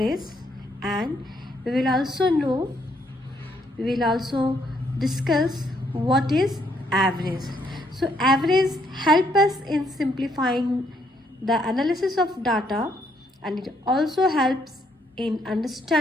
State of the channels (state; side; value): normal; both; correlation 0.71